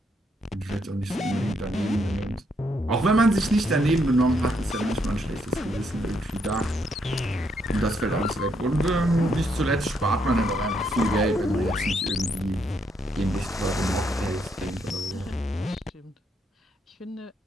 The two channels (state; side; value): normal; both; correlation 0.75